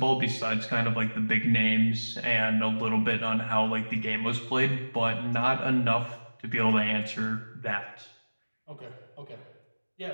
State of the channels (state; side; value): inverted; both; correlation -1.00